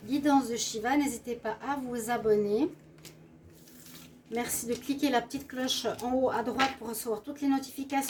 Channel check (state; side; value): identical; both; correlation 1.00